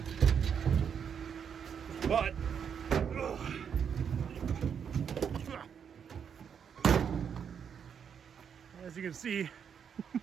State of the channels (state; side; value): quieter; left; 7.4 dB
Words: But, ugh. As you can see,